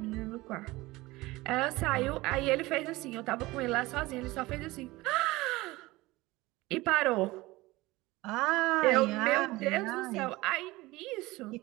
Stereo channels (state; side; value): quieter; left; 20.2 dB